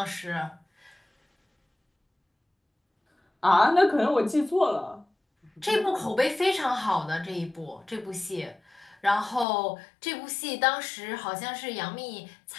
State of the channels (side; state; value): right; drops out; at 9.5 s